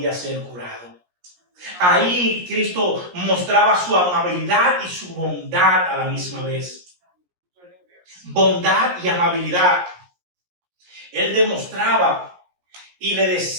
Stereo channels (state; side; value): late; left; 17 ms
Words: ser curado. Ahí Cristo mostraba su amabilidad y su bondad a la misma vez. Bondad y amabilidad. Él demostraba y le